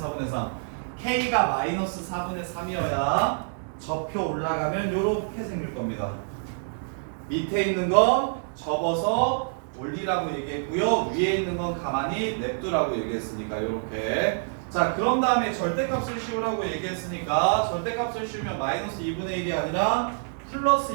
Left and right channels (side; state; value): left; silent; digital silence